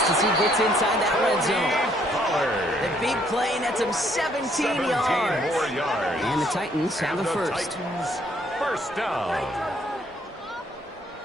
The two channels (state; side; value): normal; both; correlation 0.67